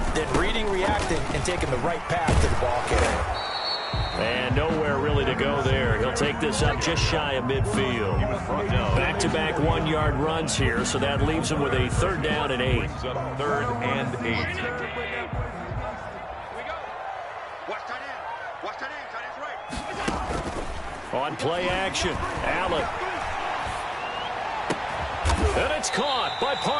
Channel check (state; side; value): identical; both; correlation 1.00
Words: then reading, reacting, and taking the right path to the ball carrier. And nowhere really to go there. He'll take this up just shy of midfield. Back-to-back 1-yard runs here, so that leaves him with a 3rd down and 8. 3rd and 8. On play action, Allen. And it's caught by